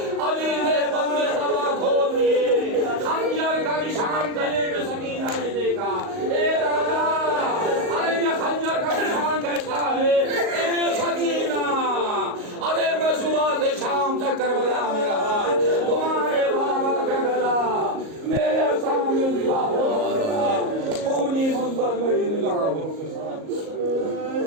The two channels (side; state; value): left; late; 38 ms